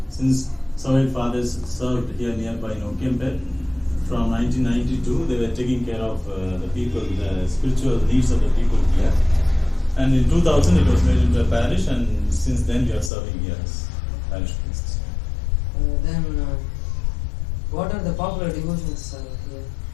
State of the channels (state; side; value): drops out; right; at 13.1 s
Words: since Servant Fathers served here nearby in Okempet, from 1992 they were taking care of the people, the spiritual needs of the people here. And in 2000 it was made into a parish, and since then we are serving here as parish priests. Then, what are the popular devotions here?